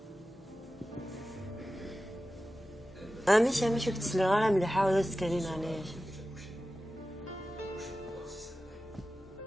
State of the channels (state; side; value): normal; both; correlation 0.94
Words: ماشي كنت لي غير مليحه ولا تكلين عليش